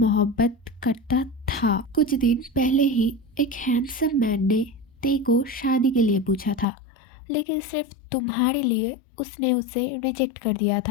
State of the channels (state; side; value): drops out; right; at 6.7 s